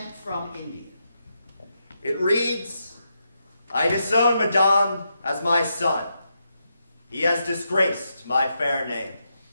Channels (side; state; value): both; inverted; correlation -0.83